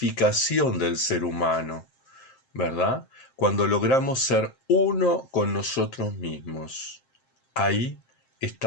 del ser humano, ¿verdad? Cuando logramos ser uno con nosotros mismos, ahí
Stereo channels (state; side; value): late; right; 7.6 ms